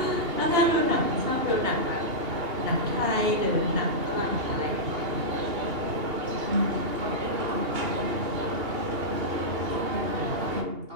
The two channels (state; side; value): late; left; 2.8 ms